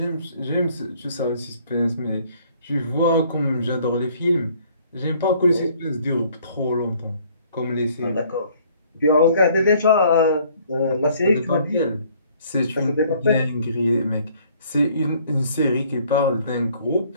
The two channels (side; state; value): both; inverted; correlation -0.60